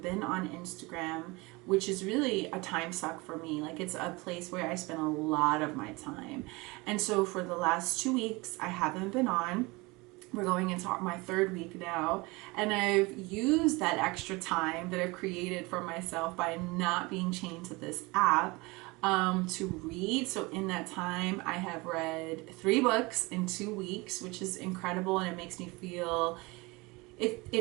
been on Instagram, which is really a time suck for me. Like, it's a place where I spend a lot of my time. And so for the last 2 weeks, I haven't been on. We're going into my 3rd week now, and I've used that extra time that I've created for myself by not being chained to this app to read. So in that time, I have read 3 books in 2 weeks, which is incredible, and it makes me feel,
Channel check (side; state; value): left; quieter; 24.6 dB